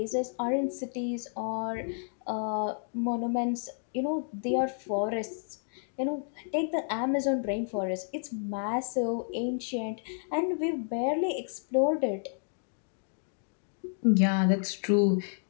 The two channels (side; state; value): right; silent; 57 dB below the other